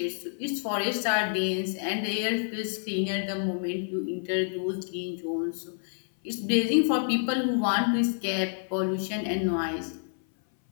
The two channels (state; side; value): silent; right; 58 dB below the other